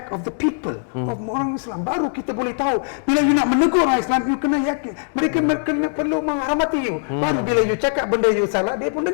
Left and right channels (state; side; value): silent; right; 65 dB below the other